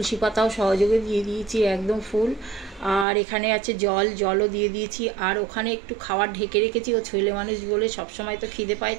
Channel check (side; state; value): left; drops out; at 3.1 s